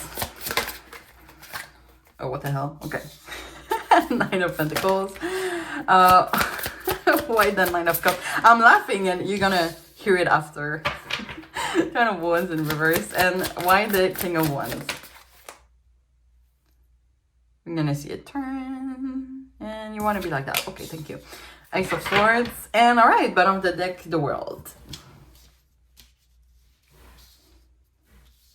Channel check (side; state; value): both; identical; correlation 1.00